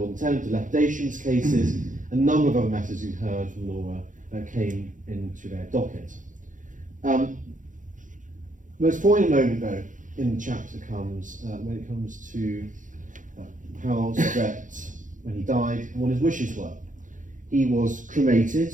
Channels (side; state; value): left; late; 0.37 ms